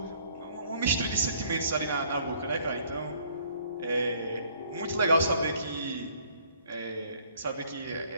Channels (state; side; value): inverted; both; correlation -0.61